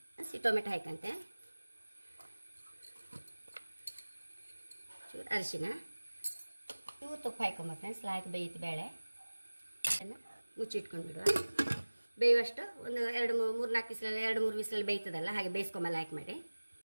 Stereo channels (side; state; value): both; inverted; correlation -1.00